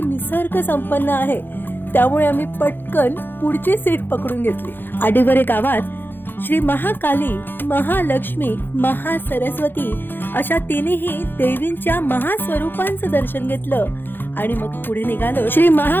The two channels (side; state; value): right; late; 0.098 ms